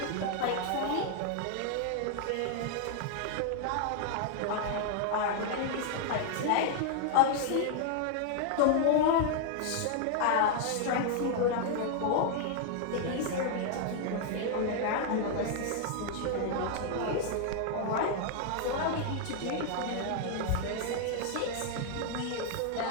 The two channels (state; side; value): different; both; correlation 0.00